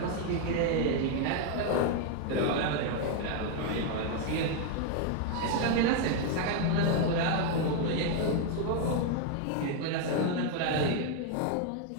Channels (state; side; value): different; both; correlation 0.01